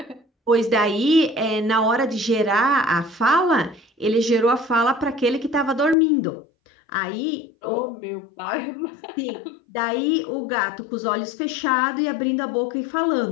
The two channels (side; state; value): right; drops out; at 6.0 s